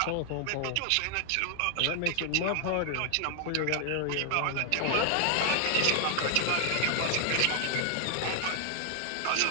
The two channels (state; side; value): different; both; correlation 0.00